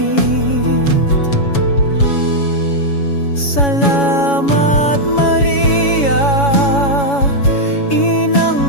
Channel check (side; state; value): right; late; 7.1 ms